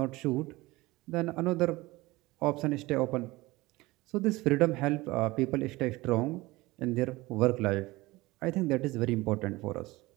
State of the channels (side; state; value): left; quieter; 20.5 dB